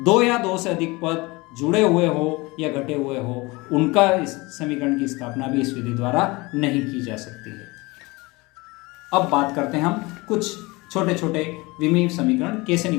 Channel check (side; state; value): right; quieter; 23.8 dB